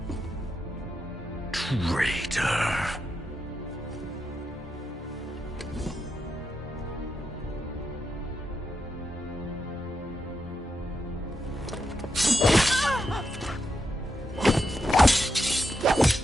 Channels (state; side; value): normal; both; correlation 0.84